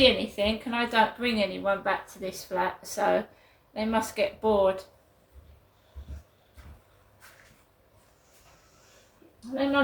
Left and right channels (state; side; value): identical; both; correlation 1.00